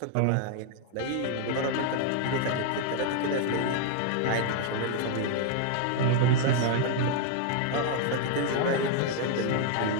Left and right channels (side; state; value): both; different; correlation 0.00